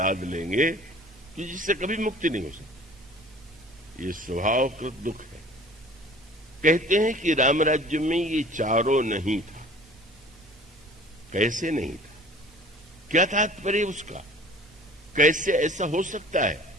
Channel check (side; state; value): both; normal; correlation 0.47